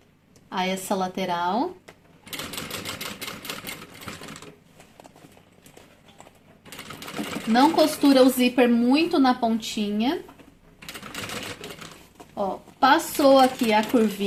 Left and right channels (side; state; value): both; identical; correlation 1.00